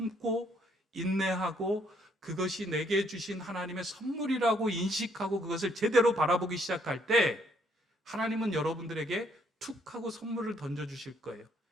인내하고 그것이 내게 주신 하나님의 선물이라고 인식하고 그것을 제대로 바라보기 시작할 때 하나님은 여러분들에게 툭 하고 선물을 던져주실 거예요.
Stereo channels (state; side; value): normal; both; correlation 0.68